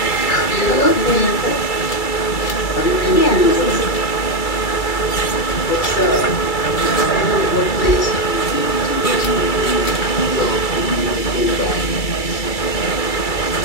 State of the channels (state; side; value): late; right; 2.3 ms